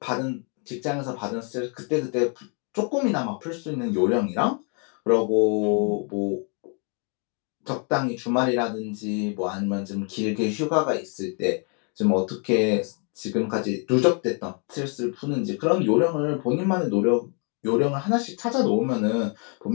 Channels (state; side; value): quieter; right; 38.3 dB